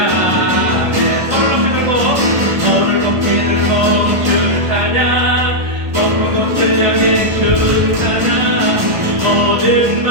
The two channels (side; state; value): left; late; 1.2 ms